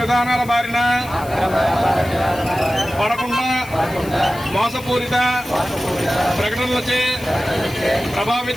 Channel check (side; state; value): left; noise; hiss, 19 dB below the sound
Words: విధానాల బారిన పడకుండా మోసపూరిత ప్రకటనలచే